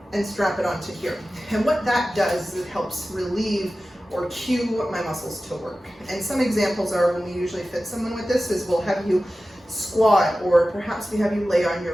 and strap it onto here. And what that does is it helps relieve or cue my muscles to work. And some examples are when we usually fit someone with this is we'll have you squat, or perhaps we have you lay on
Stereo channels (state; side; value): normal; both; correlation 0.95